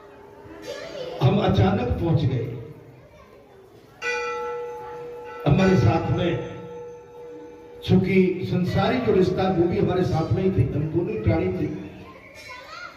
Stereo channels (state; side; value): identical; both; correlation 1.00